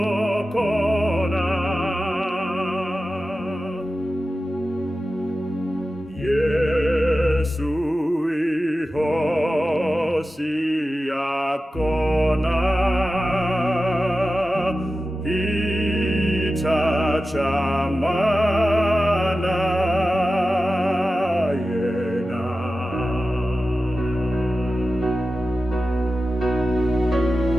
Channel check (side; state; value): both; normal; correlation 0.93